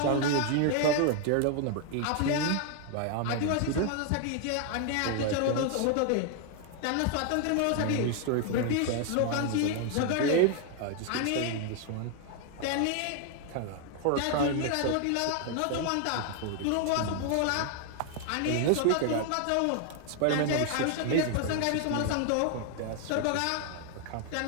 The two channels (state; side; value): different; both; correlation 0.00